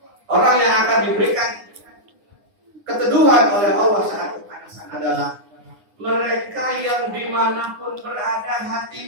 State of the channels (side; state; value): left; late; 9.7 ms